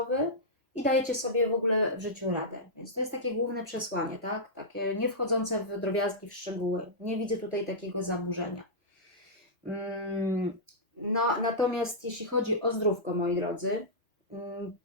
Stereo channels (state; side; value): normal; both; correlation -0.12